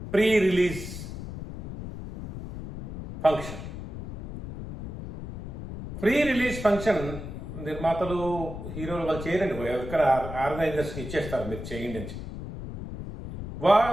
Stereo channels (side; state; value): left; noise; rumble, 9 dB below the sound